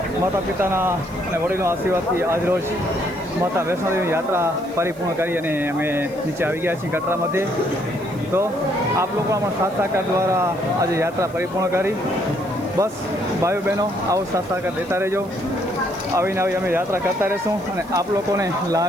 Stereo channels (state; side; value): noise; right; hiss, 25 dB below the sound